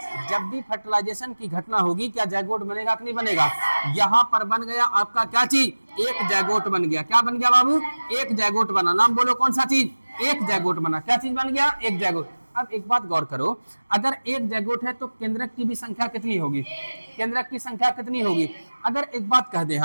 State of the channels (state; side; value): inverted; both; correlation -1.00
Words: जब भी फर्टिलाइजेशन की घटना होगी क्या जायगोट बनेगा कि नहीं बनेगा। यहां पर बन गया आपका क्या चीज, एक जायगोट बन गया। क्या बन गया बाबू, एक जायगोट बना। नाम बोलो कौन सा चीज, एक जायगोट बना। क्या चीज बन गया, एक जायगोट। अब एक बात गौर करो, अगर एक जायगोट है तो केंद्रक की भी संख्या कितनी होगी, केंद्रक की संख्या कितनी होगी। अगर एक बात कह दे